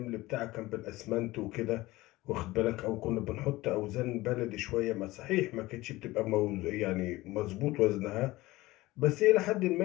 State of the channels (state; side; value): quieter; right; 19.1 dB